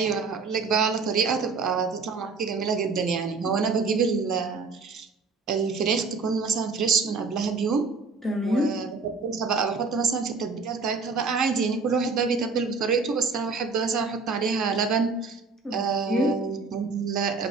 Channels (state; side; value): quieter; left; 4.4 dB